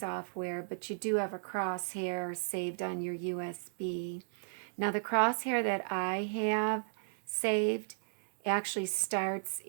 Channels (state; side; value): silent; left; digital silence